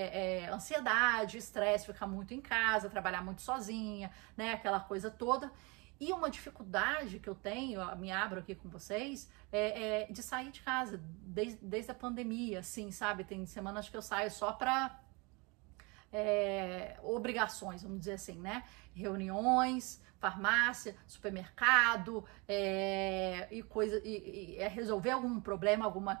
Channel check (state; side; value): quieter; left; 28.3 dB